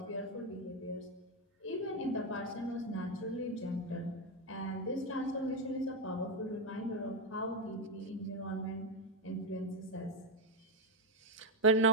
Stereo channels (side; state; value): both; normal; correlation 0.06